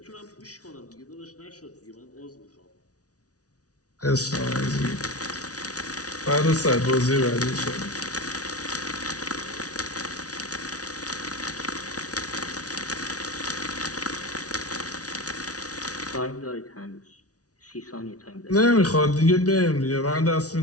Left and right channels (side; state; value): right; late; 0.68 ms